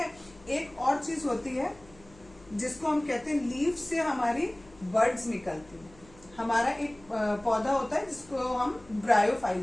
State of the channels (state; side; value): noise; left; hum, 25 dB below the sound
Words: एक और चीज होती है जिसको हम कहते हैं लीफ से हमारी बर्ड्स निकलती हैं। हमारा एक पौधा होता है जिसको हम